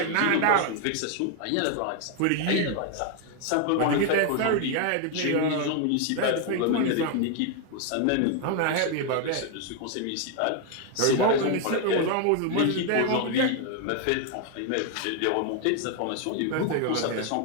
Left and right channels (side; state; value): both; different; correlation 0.01